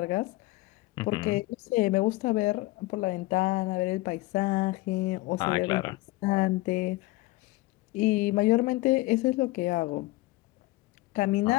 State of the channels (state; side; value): quieter; right; 20.2 dB